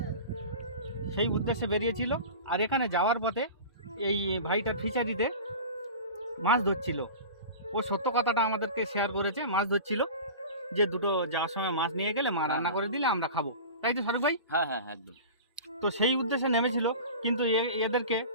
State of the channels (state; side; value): inverted; both; correlation -0.35